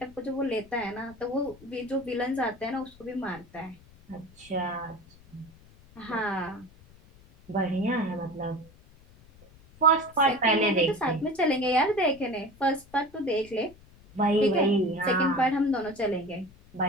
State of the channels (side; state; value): left; noise; rumble, 25 dB below the sound